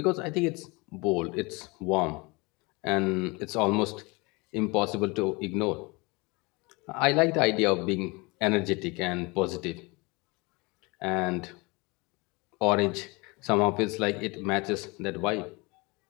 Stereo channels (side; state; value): right; quieter; 26.5 dB